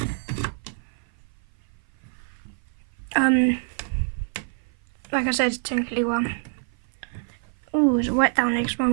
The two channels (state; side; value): silent; left; 55 dB below the other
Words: Like I said, it's technically one. Oh, it's wet down there because my